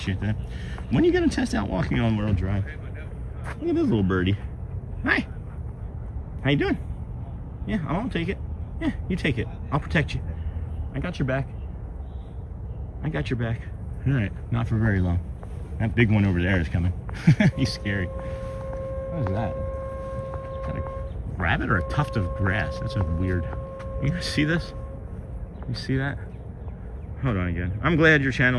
that. When are you going to test out Walking on World Drive? Look at this little birdie. Hi. How you doing? Yeah, I'll take it. Yeah, you take it. I'll protect you. I got your back. I got your back. All right, not for very long. That big one over there is coming. He's scary. What is that? Is that a rabbit or a tuft of grass? That's a weird. You guys see this? You see that? Hold on again. I'm glad your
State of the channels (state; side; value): identical; both; correlation 1.00